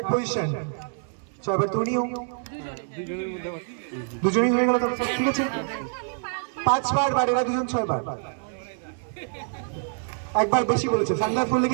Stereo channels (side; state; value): left; silent; digital silence